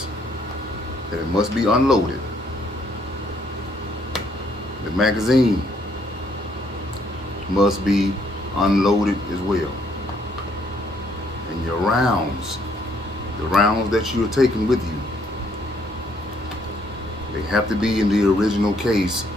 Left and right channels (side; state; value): both; normal; correlation 0.68